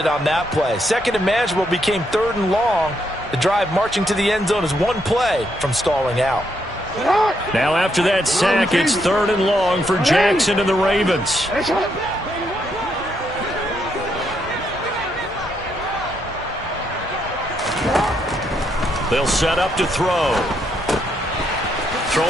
on that play. 2nd and manageable became 3rd and long. The drive marching to the end zone is 1 play from stalling out. Now after that sack, it's 3rd and long for Jackson and the Ravens. They'll set up to throw.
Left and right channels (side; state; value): both; normal; correlation 0.77